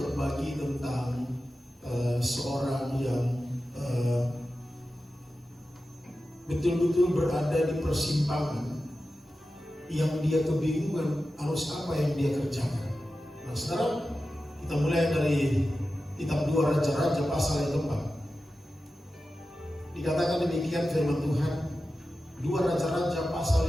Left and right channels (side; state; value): both; normal; correlation 0.93